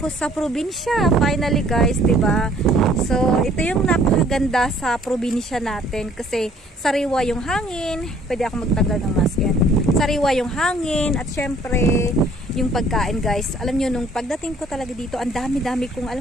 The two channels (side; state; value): both; normal; correlation 0.58